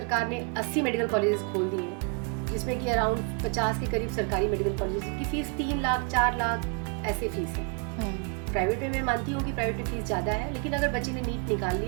ने 80 मेडिकल कॉलेजेस खोल दिए हैं, जिसमें कि अराउंड 50 के करीब सरकारी मेडिकल कॉलेजेस की फीस 3 लाख 4 लाख ऐसे फीस है। प्राइवेट में मैं मानती हूँ कि प्राइवेट में फीस ज़्यादा है, लेकिन अगर बच्चे ने नीट निकाल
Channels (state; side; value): quieter; left; 34.8 dB